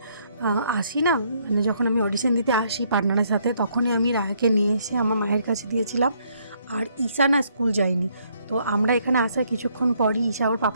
আসি না, মানে যখন আমি অডিশন দিতে আসি পার্টনারের সাথে, তখনই আমি রায়াকে নিয়ে এসে আমার মায়ের কাছে দিয়েছিলাম। আর ঈশা না স্কুল যায়নি। তো আমরা এখানে আসার কিছুক্ষণ পরই ঈশা ওর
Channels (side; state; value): both; inverted; correlation -0.69